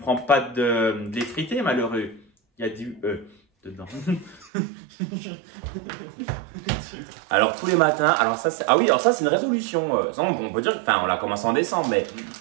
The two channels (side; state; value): left; drops out; at 4.5 s